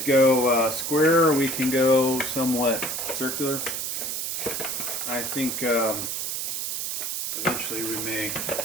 go square, or we can go somewhat circular. I think eventually we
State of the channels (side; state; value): right; noise; hiss, 3 dB below the sound